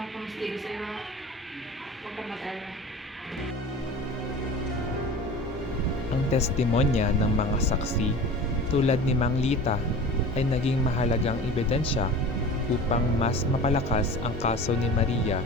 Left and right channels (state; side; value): normal; both; correlation 0.37